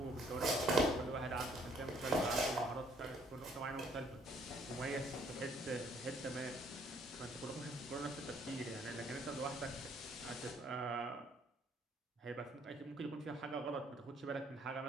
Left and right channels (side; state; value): both; normal; correlation 0.63